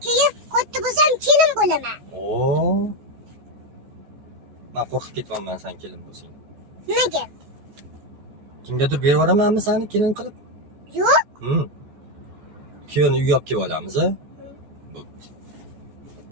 keyin katta bo'lsam kelin bo'laman. Oo. Men qo'rqib ketyapman sen kelin bo'lsang. Nimaga? Kimgadir berib yuboramanmi seni kelin qilib? Yo'q. Kuyovni uyga olib kelib olamiz, a?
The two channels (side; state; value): left; late; 14 ms